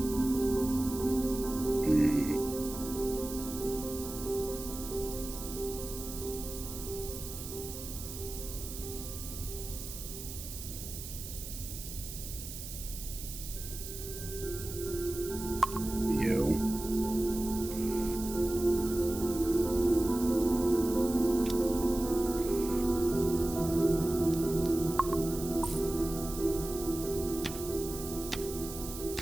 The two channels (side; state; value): right; noise; hiss, 10 dB below the sound